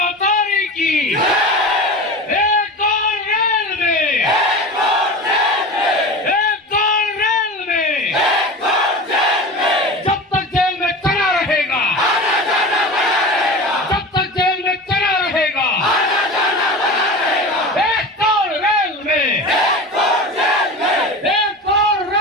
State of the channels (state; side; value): normal; both; correlation 0.31